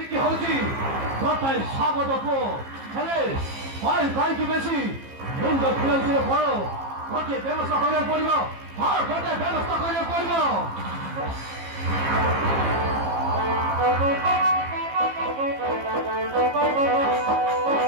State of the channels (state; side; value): late; left; 15 ms